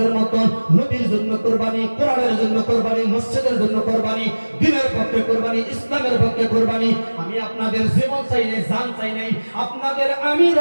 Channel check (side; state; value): both; inverted; correlation -1.00